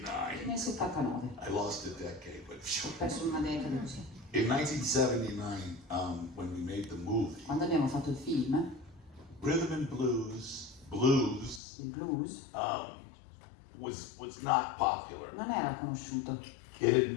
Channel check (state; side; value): drops out; right; at 11.6 s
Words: Nel 79, I lost a decade, but ho perso una decada così. in 1979, when we made the movie, Quando abbiamo fatto il film, rhythm and blues il blues was not popular. non era conosciuto.